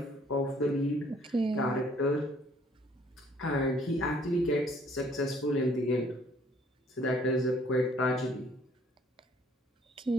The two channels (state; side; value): normal; both; correlation 0.60